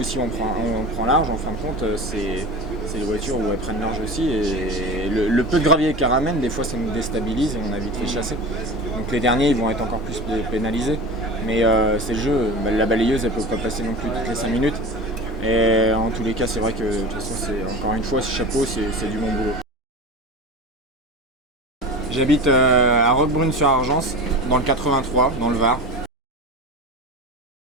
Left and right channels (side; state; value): both; normal; correlation 0.31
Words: aussi on prend large. En fin de compte, c'est les voitures où elles prennent large aussi, et le peu de gravier qu'elles ramènent, des fois ça nous déstabilise et on a vite fait chasser. Donc les derniers ils vont être encore plus pénalisés, mais c'est le jeu. La balayeuse elle peut pas passer non plus toutes les 5 minutes, et en tous les cas c'est vrai que de toute façon, c'est encore une fois, ce chapeau, c'est du bon boulot. J'habite à Roquebrune-sur-Argence, dans le 83, dans le Var.